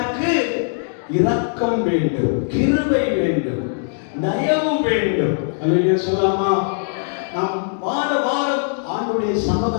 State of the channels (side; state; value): right; silent; digital silence